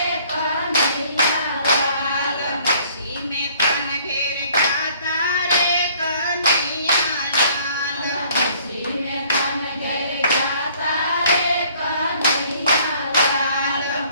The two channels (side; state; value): both; inverted; correlation -0.58